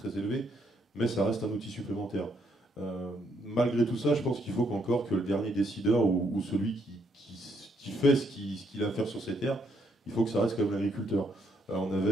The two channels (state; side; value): normal; both; correlation 0.73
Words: élevés, mais ça reste un outil supplémentaire. Malgré tout ça, je pense qu'il faut qu'encore que le dernier décideur ou celui qui fait ce qu'il a à faire sur ces terres, il faut que ça reste comme l'agriculteur. On